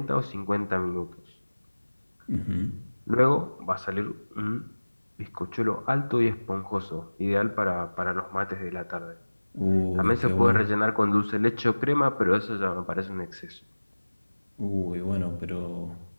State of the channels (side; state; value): both; inverted; correlation -1.00